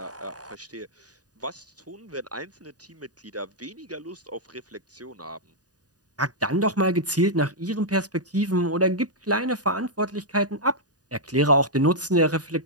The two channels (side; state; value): left; late; 0.68 ms